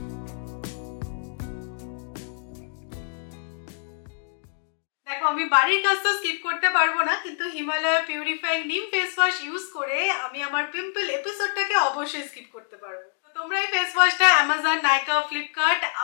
আমি বাড়ির কাজ তো স্কিপ করতে পারবো না, কিন্তু Himalaya purifying neem face wash use করে আমি আমার পিম্পল এপিসোডটাকে অবশ্যই স্কিপ করতে পারবো। তো তোমরা এই ফেস ওয়াশটা অ্যামাজন, নাইকা, ফ্লিপকার্ট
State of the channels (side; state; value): right; silent; digital silence